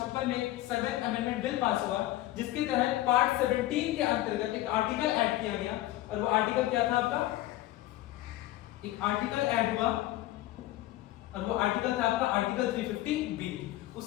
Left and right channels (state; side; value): quieter; right; 15.8 dB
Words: में 7th अमेंडमेंट बिल पास हुआ, जिसके तहत पार्ट 17 के अंतर्गत एक आर्टिकल ऐड किया गया। और वो आर्टिकल क्या था आपका, एक आर्टिकल ऐड हुआ और वो आर्टिकल था आपका आर्टिकल 350B।